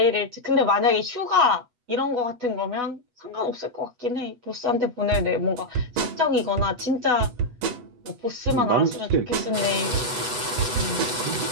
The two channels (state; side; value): late; left; 8.1 ms